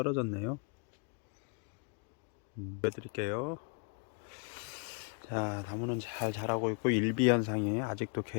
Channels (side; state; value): right; quieter; 38.9 dB